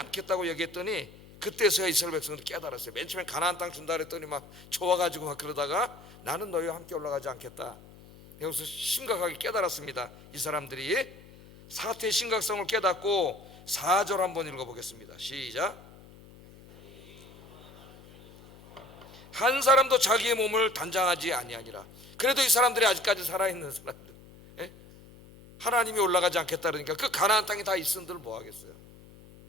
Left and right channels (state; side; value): noise; left; hum, 21 dB below the sound